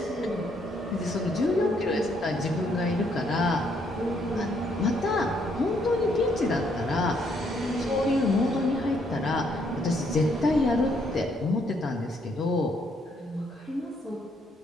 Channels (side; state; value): both; normal; correlation 0.71